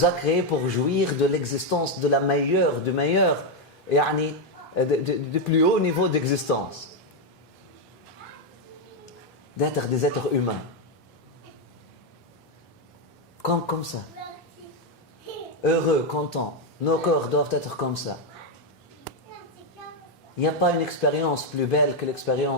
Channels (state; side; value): normal; both; correlation 0.03